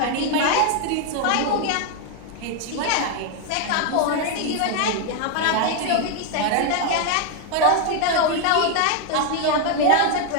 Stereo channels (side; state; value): both; different; correlation 0.01